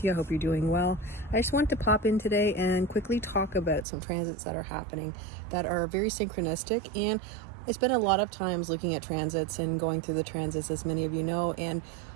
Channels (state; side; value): drops out; left; at 3.9 s